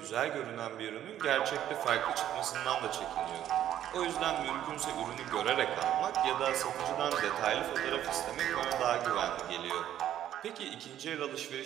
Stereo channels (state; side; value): quieter; left; 11.4 dB